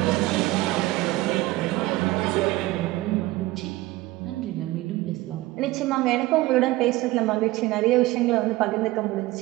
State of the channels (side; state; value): left; quieter; 18.8 dB